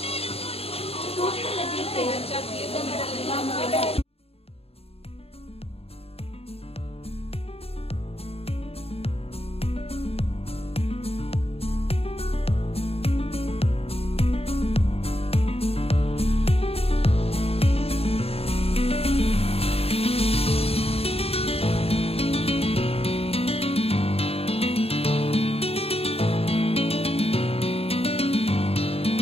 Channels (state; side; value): late; right; 0.29 ms